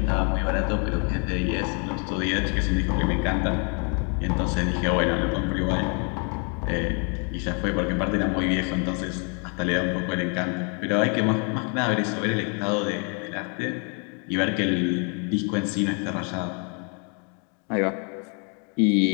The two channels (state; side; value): quieter; right; 37.8 dB